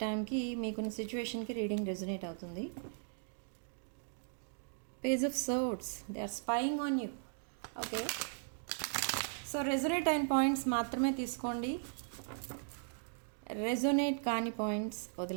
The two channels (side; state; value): left; silent; digital silence